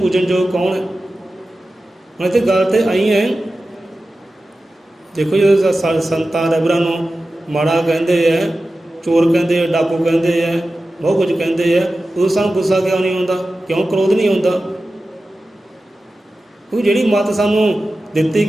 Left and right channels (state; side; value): normal; both; correlation 0.94